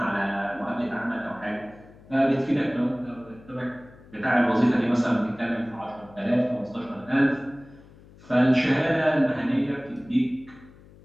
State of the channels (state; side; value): noise; left; hum, 23 dB below the sound